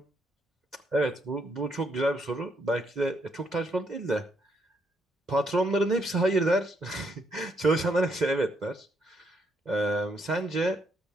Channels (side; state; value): both; normal; correlation 0.74